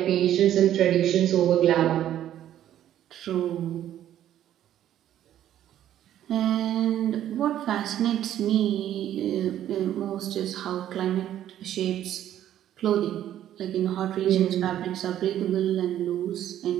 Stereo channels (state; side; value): quieter; left; 11.6 dB